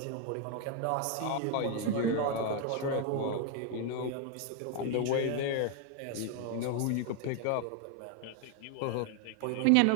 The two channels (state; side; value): different; both; correlation 0.00